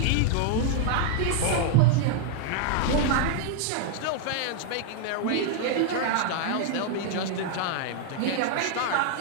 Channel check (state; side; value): different; both; correlation 0.00